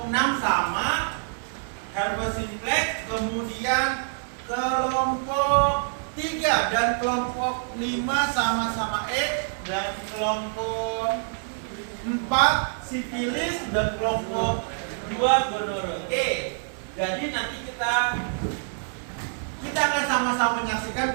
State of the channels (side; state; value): left; silent; digital silence